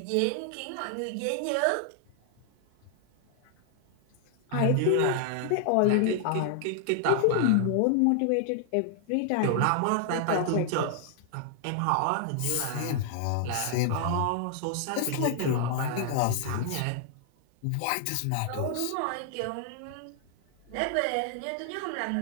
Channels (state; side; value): different; both; correlation 0.00